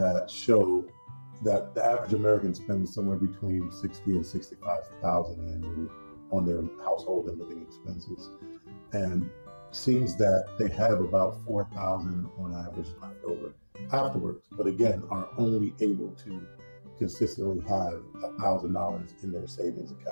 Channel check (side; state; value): both; inverted; correlation -1.00